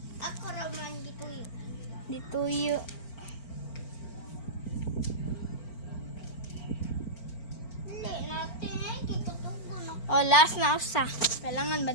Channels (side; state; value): right; late; 4.4 ms